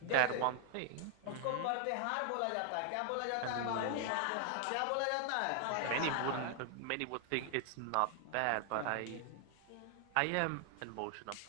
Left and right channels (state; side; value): different; both; correlation 0.00